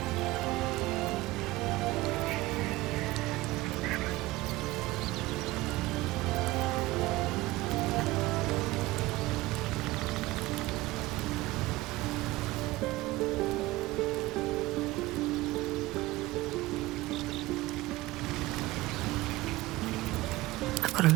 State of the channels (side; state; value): left; quieter; 19.0 dB